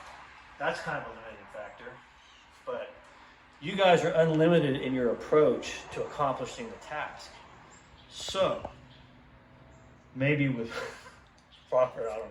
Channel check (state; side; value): identical; both; correlation 1.00